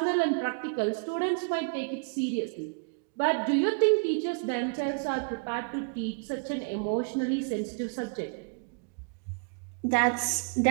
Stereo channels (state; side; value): quieter; left; 36.2 dB